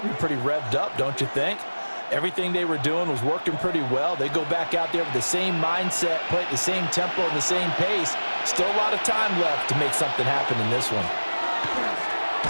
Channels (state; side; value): inverted; both; correlation -1.00